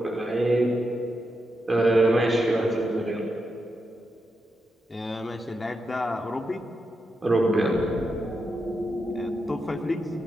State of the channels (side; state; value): both; normal; correlation 0.86